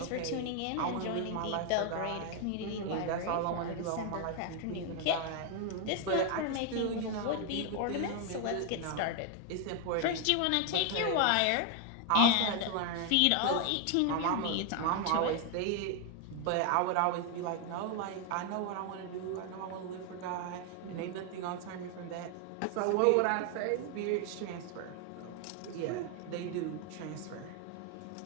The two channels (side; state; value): both; different; correlation 0.00